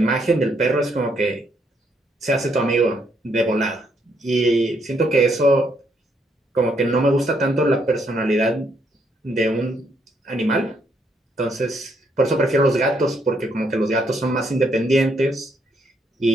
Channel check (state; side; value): normal; both; correlation 0.73